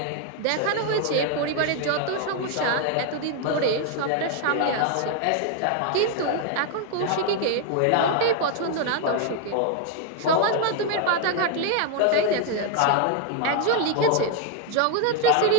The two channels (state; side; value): different; both; correlation 0.00